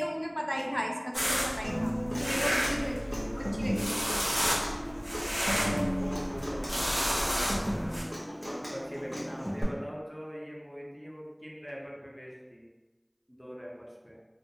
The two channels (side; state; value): both; identical; correlation 1.00